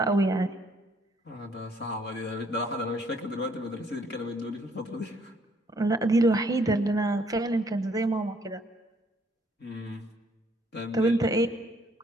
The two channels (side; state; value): both; normal; correlation 0.66